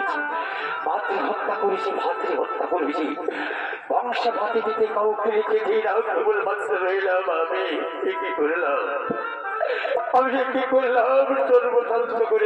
মাতৃ হত্যা করেছি, ভাতৃ হত্যা করেছি, বংশ ভাতে দিতে কাউকে রেখে দিই না, কেবল মাত্র রইলাম আমি। কি করলাম আমি, কি করলাম? সর্বশান্ত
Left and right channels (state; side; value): identical; both; correlation 1.00